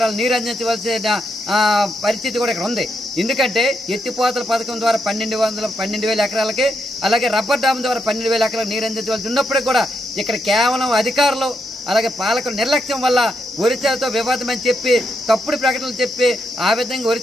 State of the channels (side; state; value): both; normal; correlation 0.81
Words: నీరు అందించవలసిన పరిస్థితి కూడా ఇక్కడ ఉంది. ఎందుకంటే ఎత్తిపోతల పథకం ద్వారా 12,000 ఎకరాలకి అలాగే రబ్బర్ డ్యామ్ ద్వారా 12,000 ఎకరాలకు నీరు అందించవలసి ఉన్నప్పటికీ కూడా ఇక్కడ కేవలం అధికారులు అలాగే పాలకుల నిర్లక్ష్యం వల్ల ఒరిస్సాతో వివాదం అని చెప్పి తప్పుడు ప్రకటనలు చెప్పి ఆ విధంగా